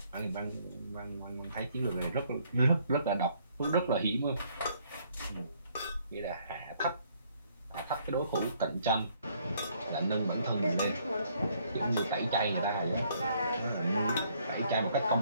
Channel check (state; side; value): inverted; both; correlation -0.66